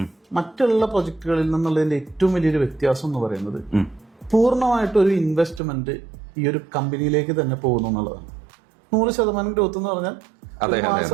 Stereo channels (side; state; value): left; drops out; at 5.6 s